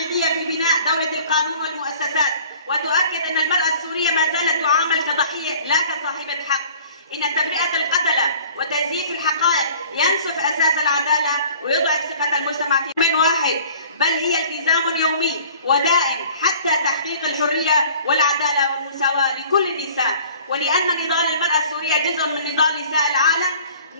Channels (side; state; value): both; inverted; correlation -0.49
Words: في بناء دولة القانون والمؤسسات، وتؤكد أن المرأة السورية ما زالت تعامل كضحية لا كصاحبة حق. إن تبرئة القتلة وتزييف الحقائق ينسف أساس العدالة ويضعف ثقة المجتمع في من واحد، بل هي التزام يومي ودائم حتى تحقيق الحرية والعدالة والمساواة لكل النساء. ولأن نضال المرأة السورية جزء من نضال نساء العالم،